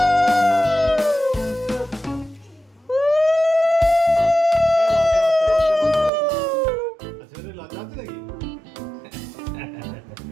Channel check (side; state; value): left; drops out; at 6.1 s